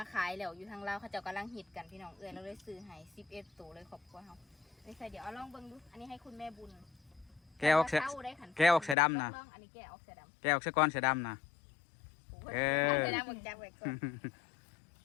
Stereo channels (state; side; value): drops out; right; at 9.0 s